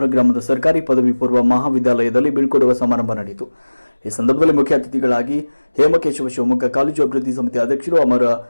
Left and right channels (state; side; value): inverted; both; correlation -1.00